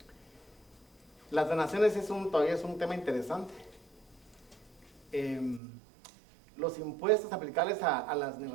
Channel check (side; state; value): left; drops out; at 5.6 s